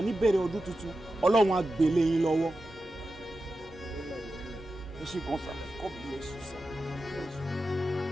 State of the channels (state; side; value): normal; both; correlation 0.92